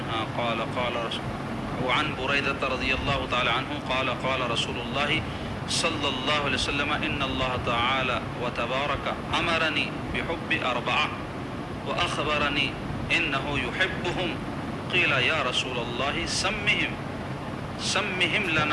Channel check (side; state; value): both; identical; correlation 1.00